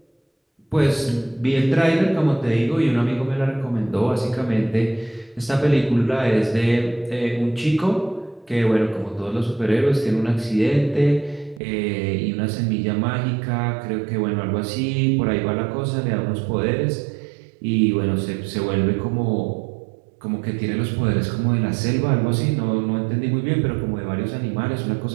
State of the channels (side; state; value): left; drops out; at 11.6 s